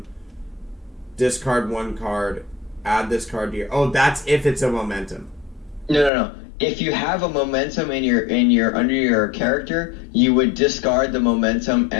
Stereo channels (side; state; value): right; drops out; at 6.1 s